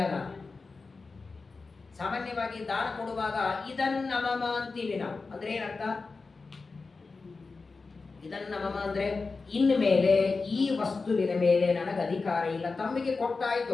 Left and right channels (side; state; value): right; quieter; 4.1 dB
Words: ಸಾಮಾನ್ಯವಾಗಿ ದಾನ ಕೊಡುವಾಗ ಇದನ್ನ ಮಮ ಅಂತೀವಿ ನಾವು. ಅಂದ್ರೆ ಏನರ್ಥ? ಇದನ್ನ ಮಮ ಅಂದ್ರೆ ಇನ್ಮೇಲೆ ಈ ವಸ್ತುವಿನ ಮೇಲೆ ನನಗೆ ಅಧಿಕಾರ ಇಲ್ಲ. ತಮ್ಮಿಗೆ